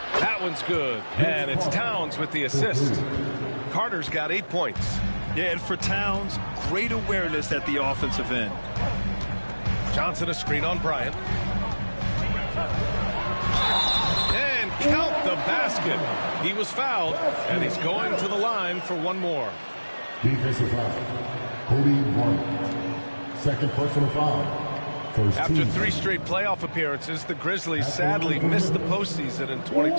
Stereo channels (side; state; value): both; inverted; correlation -1.00